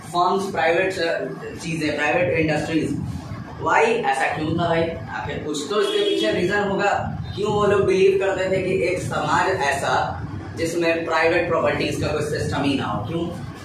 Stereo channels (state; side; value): identical; both; correlation 1.00